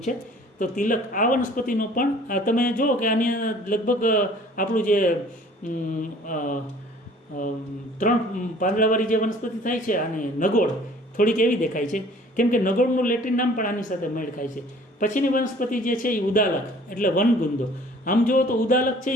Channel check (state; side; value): normal; both; correlation 0.52